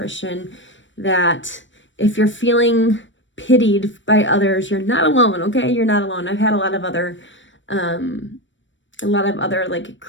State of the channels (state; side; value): late; right; 0.55 ms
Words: that if you're feeling pitied by others, you're not alone, okay? You're not alone. I've had a lot of other like